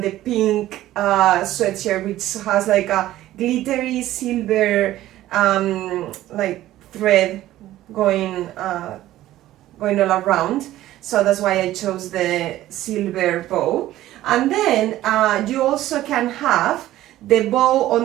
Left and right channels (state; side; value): quieter; left; 14.5 dB